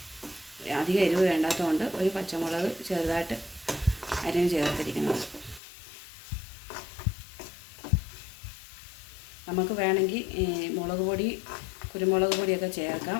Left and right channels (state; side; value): drops out; right; at 5.6 s